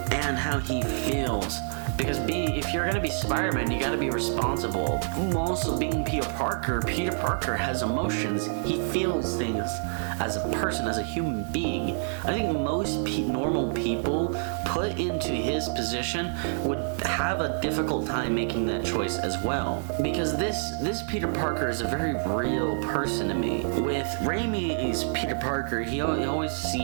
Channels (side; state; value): left; silent; digital silence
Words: and how he feels. Because if you're gonna be Spider-Man, you gotta be responsible. Also, being Peter Parker has emotions. He feels things as a person, as a human being. I think most normal people put into his position would have a difficult time making that choice as well. Because this Peter Parker is a very real person to me. With Raimi's Peter Parker, he always